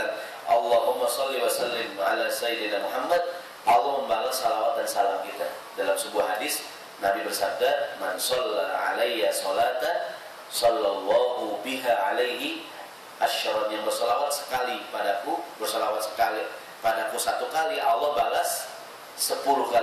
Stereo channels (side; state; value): both; identical; correlation 1.00